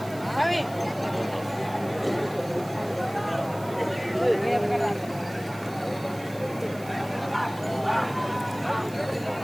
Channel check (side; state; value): right; noise; hiss, 20 dB below the sound